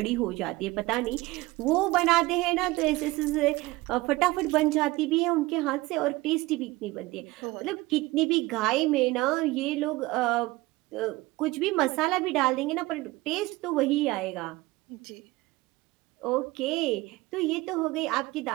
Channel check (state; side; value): quieter; left; 20.3 dB